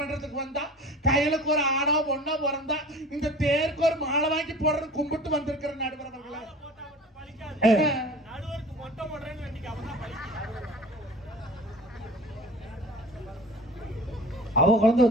வந்தா கையலுக்கு ஒரு ஆணோ பொண்ணோ பிறந்தா இந்த தேருக்கு ஒரு மாலை வாங்கி போடுற கும்பிட்டு வந்திருக்கிற நடுவரவர்களே. அவ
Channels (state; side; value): normal; both; correlation 0.41